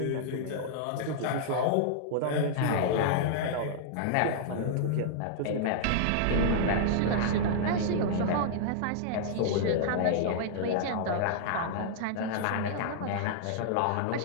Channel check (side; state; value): both; different; correlation -0.01